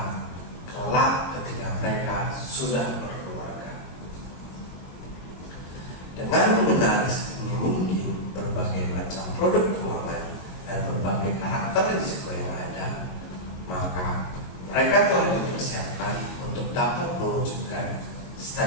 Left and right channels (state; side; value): late; right; 22 ms